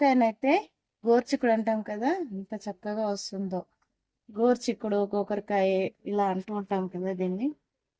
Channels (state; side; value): identical; both; correlation 1.00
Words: గోర్చిక్కుడు అంటాం కదా, ఎంత చక్కగా వస్తుందో. గోర్చిక్కుడు గోకరకాయ ఇలా అంటూ ఉంటాం కదా దీన్ని.